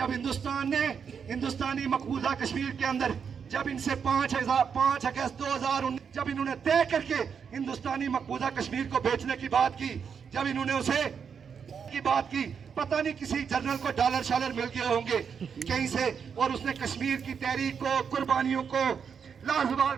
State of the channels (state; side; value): quieter; left; 6.7 dB